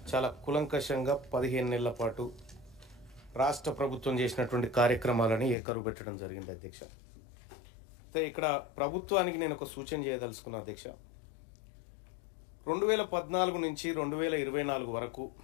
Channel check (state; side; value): drops out; right; at 5.6 s